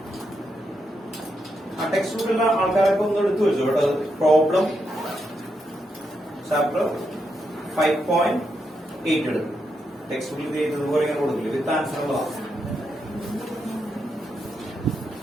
ആ text ബുക്കിലുള്ള ആൾക്കാരൊക്കെ ഒന്ന് എടുത്തു വെച്ചു കേട്ടോ. പ്രോബ്ലം ചാപ്റ്റർ 5.8 എടുക്കും. ടെക്സ്റ്റ് ബുക്കിൽ ഇതുപോലെ ഇങ്ങനെ കൊടുക്കില്ല. വിത്ത് ആൻസർ ഉള്ളതാണ്.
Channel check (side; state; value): both; normal; correlation 0.82